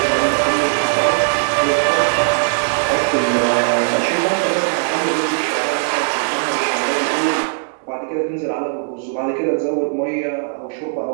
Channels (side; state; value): left; silent; digital silence